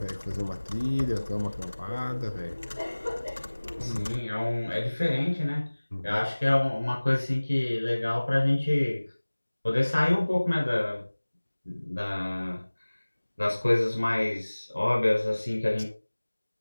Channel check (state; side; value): inverted; both; correlation -1.00